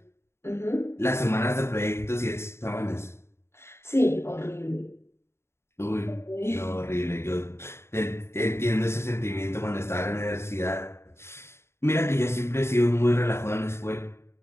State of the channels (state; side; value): late; right; 0.12 ms